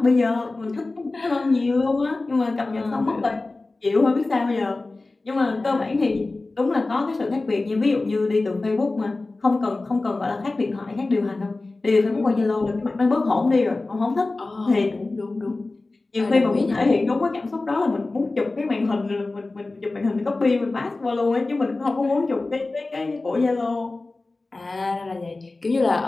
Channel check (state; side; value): quieter; right; 3.3 dB